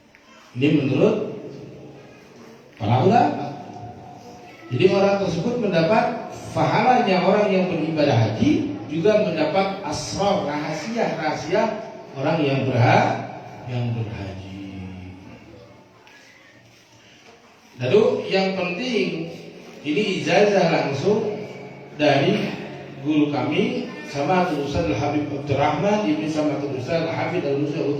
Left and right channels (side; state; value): both; identical; correlation 1.00